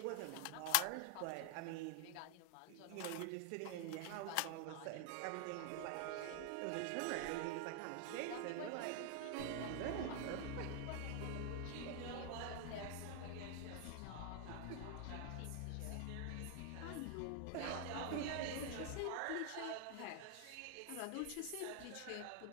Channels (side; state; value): both; different; correlation 0.00